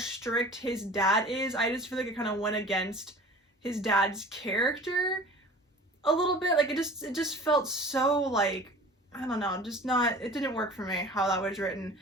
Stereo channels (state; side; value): normal; both; correlation 0.42